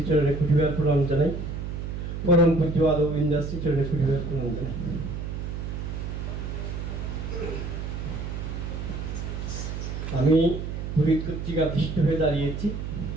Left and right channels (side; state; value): right; noise; hum, 5 dB below the sound